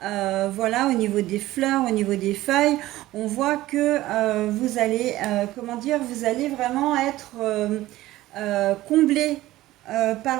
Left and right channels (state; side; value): quieter; left; 16.3 dB